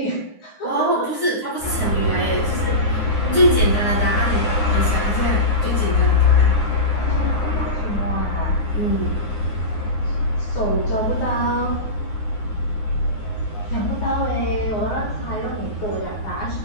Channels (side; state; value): right; late; 9.5 ms